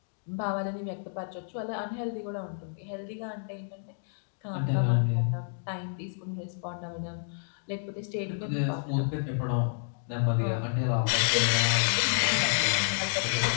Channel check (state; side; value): silent; right; digital silence